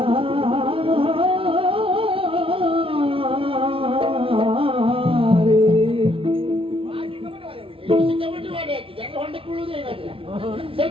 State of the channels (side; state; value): left; late; 0.26 ms